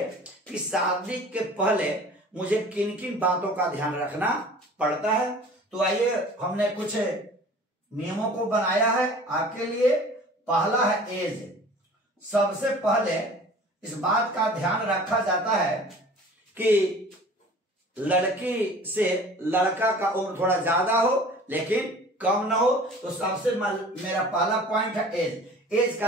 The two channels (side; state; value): both; normal; correlation 0.45